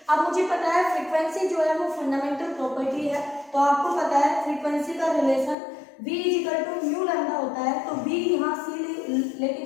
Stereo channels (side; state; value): right; drops out; at 5.6 s